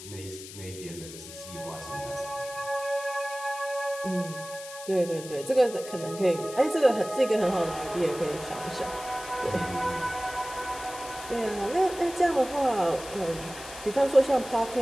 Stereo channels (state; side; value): noise; left; hiss, 14 dB below the sound